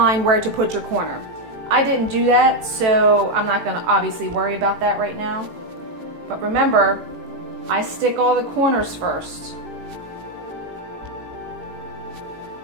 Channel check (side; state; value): left; late; 18 ms